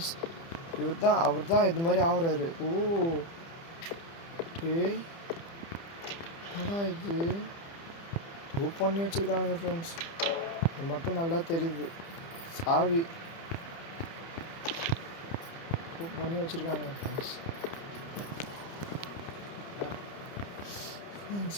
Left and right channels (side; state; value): right; late; 30 ms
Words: அவர் தான் இது மாதிரி ஆகுறாரு. ஓ டேய் என்னடா இது? ரூப் பண்ணி வச்சுருக்கானுங்க ஃப்ரெண்ட்ஸ். இது மட்டும் நல்லா தெரியுது. சாவி ரூப் பண்ணி வச்சுருக்கானுங்க ஃப்ரெண்ட்ஸ்.